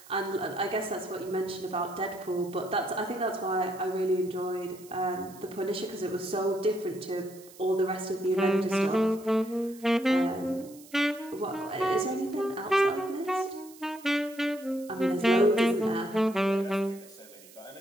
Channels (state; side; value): noise; right; hiss, 21 dB below the sound